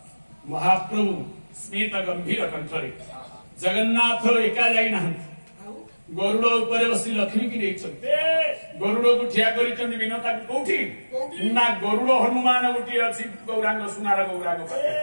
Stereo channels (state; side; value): inverted; both; correlation -1.00